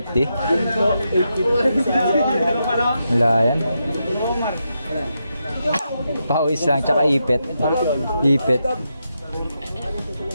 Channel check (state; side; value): inverted; both; correlation -0.84